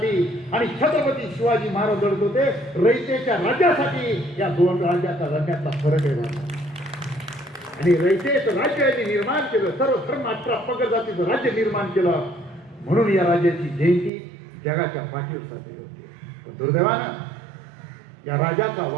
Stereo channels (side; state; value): left; drops out; at 14.1 s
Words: आणि छत्रपती शिवाजी महाराज लढत होते रयतेच्या राज्यासाठी. या दोन राज्यातला फरक आहे. आणि रयतेचं राज्य यांनी निर्माण केलं, सर्व धर्म 18 पगड जातीचं राज्य निर्माण केलं. म्हणून या राज्याची जयंती जगाच्या पाठीवर साजरी होते. पण दुर्दैवानं या राजाचा